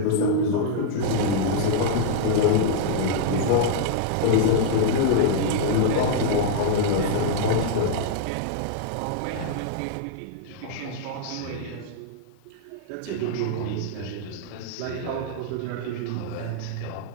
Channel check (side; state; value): both; different; correlation -0.01